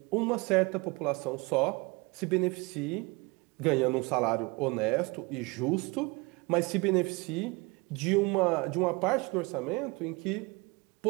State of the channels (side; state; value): left; quieter; 26.3 dB